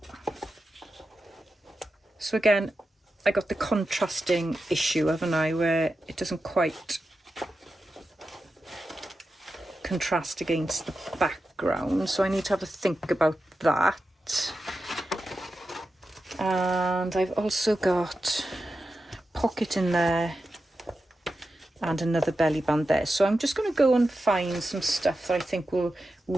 So again, I got the contrasting issue, haven't I, where it doesn't quite contrast against the background, so I need to have a think about that. And I've also got a pocket in there and another belly band there, so I'm just going to go and find some stuff that I think will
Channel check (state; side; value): normal; both; correlation 0.91